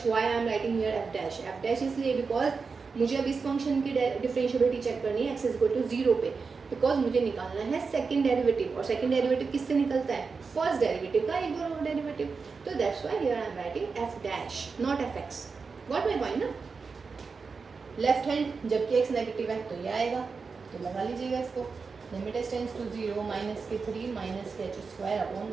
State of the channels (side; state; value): left; quieter; 4.9 dB